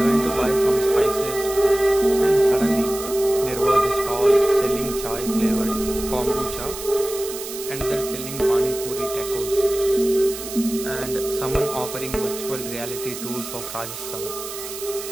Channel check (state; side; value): noise; right; hiss, 10 dB below the sound